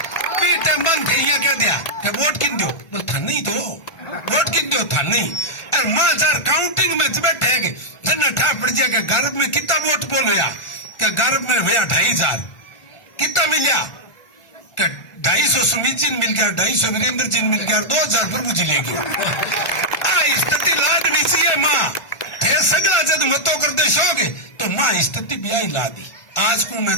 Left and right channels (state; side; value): late; right; 1.4 ms